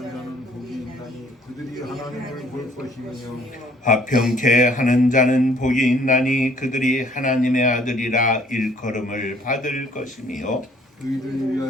복이 있나니 그들이 하나님을 볼 것이며 화평케 하는 자는 복이 있나니 그들이 하나님의 아들이라 일컬음을 받을 것이며 의를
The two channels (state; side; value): normal; both; correlation 0.59